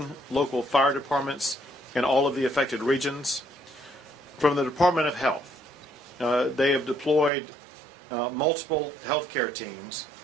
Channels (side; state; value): left; drops out; at 7.3 s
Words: local fire departments in all of the affected regions. From the Department of Health, they have deployed multiple healthcare teams.